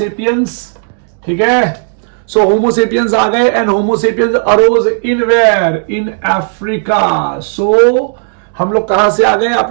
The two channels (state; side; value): silent; left; digital silence